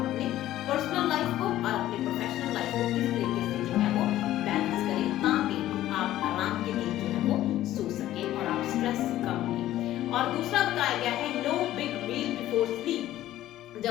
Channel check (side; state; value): right; quieter; 13.9 dB